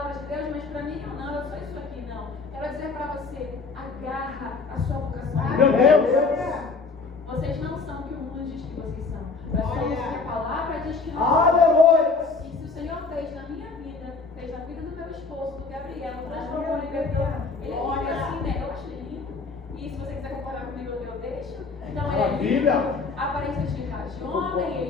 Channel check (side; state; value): right; quieter; 4.2 dB